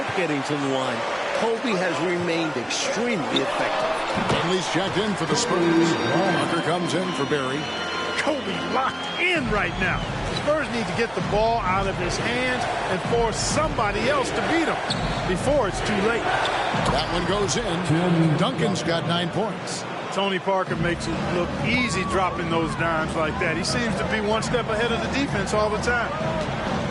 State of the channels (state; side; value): identical; both; correlation 1.00